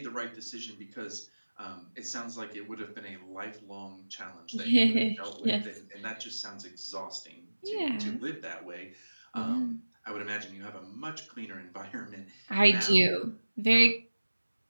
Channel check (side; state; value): both; inverted; correlation -1.00